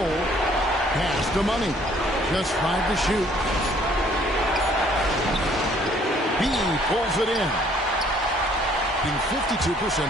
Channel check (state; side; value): normal; both; correlation 0.61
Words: Pass to Money. Just 5 to shoot. B pulls it in. Being 52%